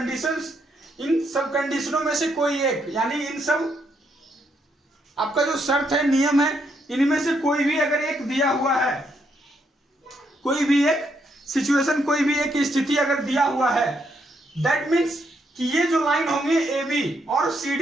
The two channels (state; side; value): normal; both; correlation 0.76